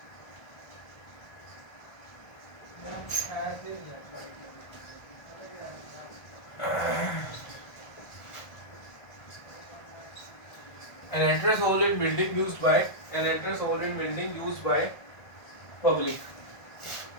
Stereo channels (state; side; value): late; right; 1.3 ms